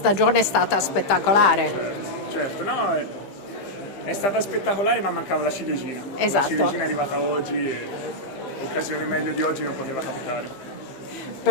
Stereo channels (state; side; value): late; right; 15 ms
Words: è stata spettacolare? Certo, no, è stata spettacolare, ma mancava la ciliegina. Esatto. La ciliegina è arrivata oggi e occasione meglio di oggi non poteva capitare.